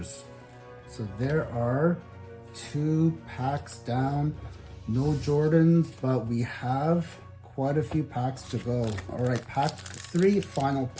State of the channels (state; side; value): identical; both; correlation 1.00